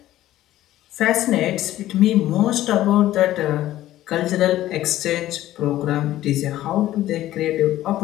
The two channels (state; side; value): quieter; right; 14.2 dB